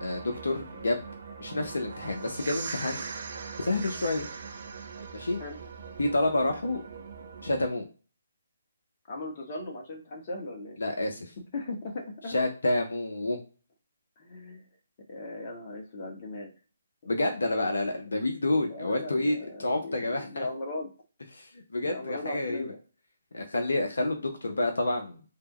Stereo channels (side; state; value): both; inverted; correlation -0.86